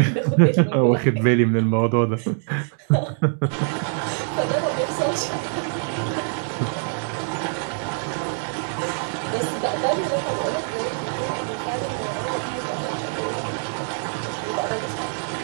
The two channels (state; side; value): silent; left; 55 dB below the other